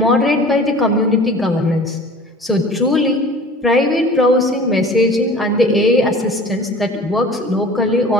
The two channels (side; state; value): both; normal; correlation 0.43